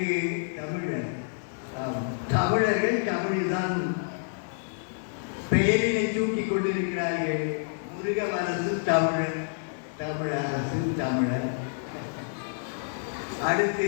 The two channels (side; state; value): right; silent; 59 dB below the other